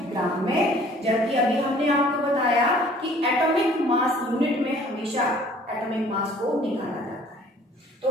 ग्राम में, जबकि अभी हमने आपको बताया कि एटॉमिक मास यूनिट में हमेशा एटॉमिक मास को निकाला जाता है। तो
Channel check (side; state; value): both; normal; correlation 0.54